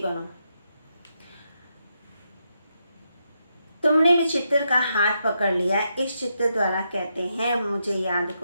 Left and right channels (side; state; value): both; inverted; correlation -0.82